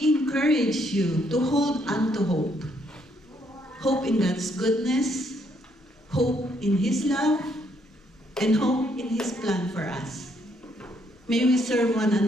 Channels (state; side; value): normal; both; correlation 0.71